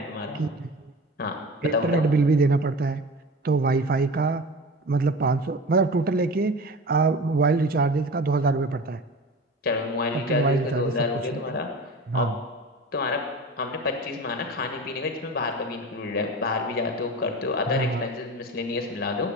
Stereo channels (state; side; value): normal; both; correlation 0.33